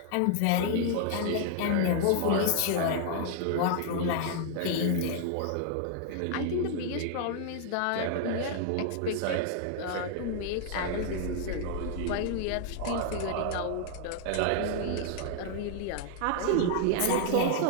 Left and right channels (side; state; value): both; different; correlation 0.00